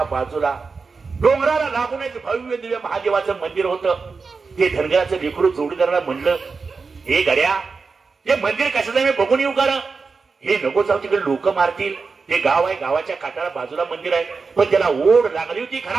बाजूला डोंगराला लागूनच भव्य दिव्य महादेवाचं मंदिर होतं. ते धनगराचं लेकरू जोडीदाराला म्हणलं, हे गड्या, हे मंदिर कशाचं मी बघून येऊ का? हे नको जाऊ, तिकडे लोक मारतील. ते गाव आहे, गावाच्या काठाला बाजूला मंदिर आहे. पण त्याला ओढ लागली होती,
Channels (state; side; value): quieter; left; 4.7 dB